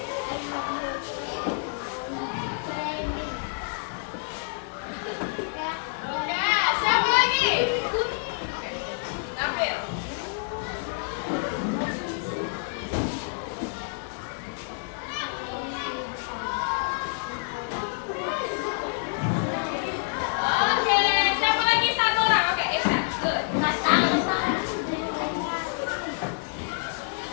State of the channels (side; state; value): right; silent; 60 dB below the other